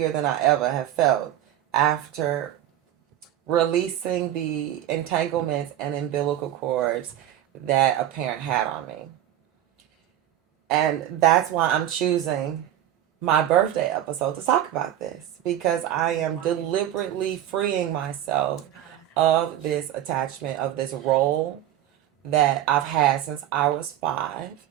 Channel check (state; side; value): quieter; left; 12.1 dB